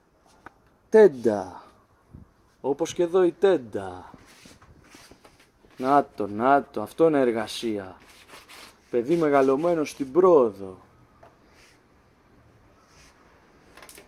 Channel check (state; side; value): identical; both; correlation 1.00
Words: τέντα. Όπως και εδώ η τέντα. Να το, αυτό είναι εργασία. Παιδί μεγαλωμένο στην πρόοδο.